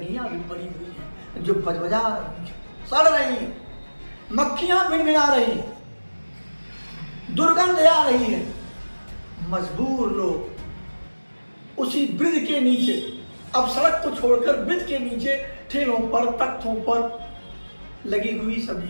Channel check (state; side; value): inverted; both; correlation -1.00